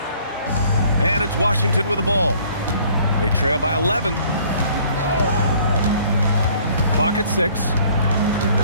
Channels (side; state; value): both; inverted; correlation -0.57